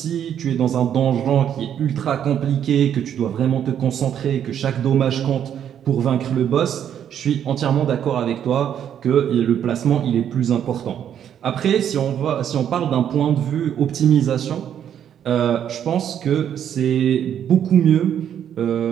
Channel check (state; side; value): quieter; left; 9.4 dB